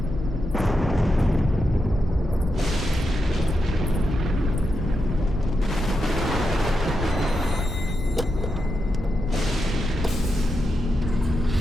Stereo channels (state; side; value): normal; both; correlation 0.86